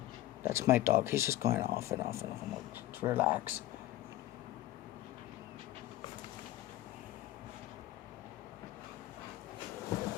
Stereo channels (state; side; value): quieter; right; 15.2 dB